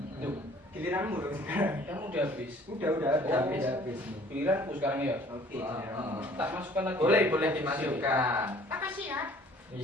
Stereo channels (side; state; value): both; normal; correlation 0.54